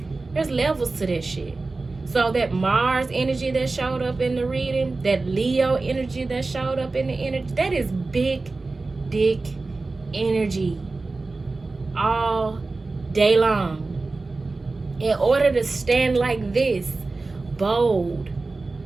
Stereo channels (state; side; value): quieter; left; 3.5 dB